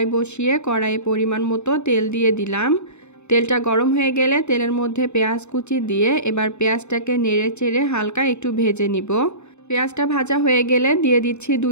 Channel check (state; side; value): late; right; 0.82 ms